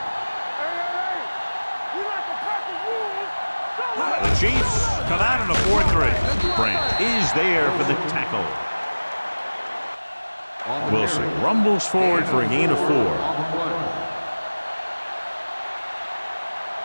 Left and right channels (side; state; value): both; inverted; correlation -1.00